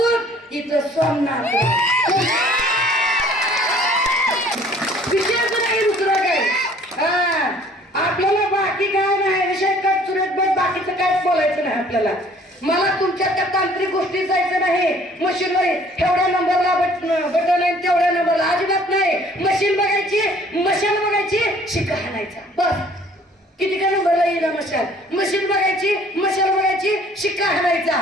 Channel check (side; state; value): both; normal; correlation 0.56